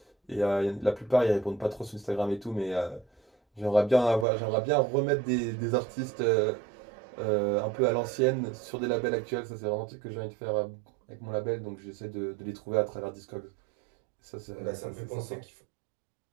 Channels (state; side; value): drops out; left; at 4.2 s